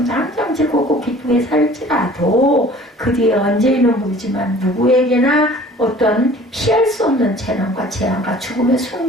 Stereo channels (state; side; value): normal; both; correlation 0.49